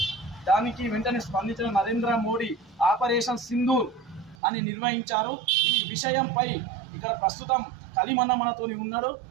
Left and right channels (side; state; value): left; drops out; at 4.4 s